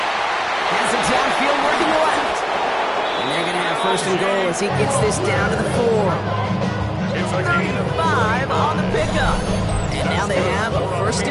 Has it downfield working left. And they're going to have 1st and goal as he gets this down to the 4. It's a gain of 5 on the pickup. And now they have a 1st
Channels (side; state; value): both; identical; correlation 1.00